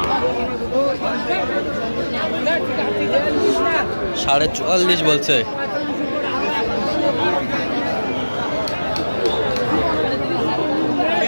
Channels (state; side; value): inverted; both; correlation -1.00